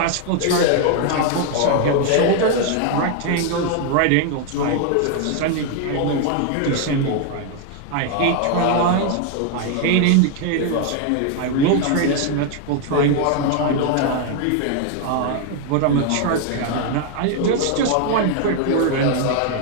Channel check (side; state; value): both; different; correlation 0.00